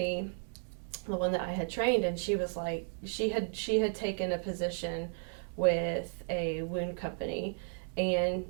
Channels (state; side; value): silent; left; digital silence